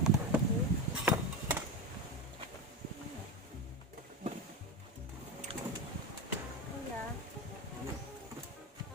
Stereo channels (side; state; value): both; normal; correlation 0.19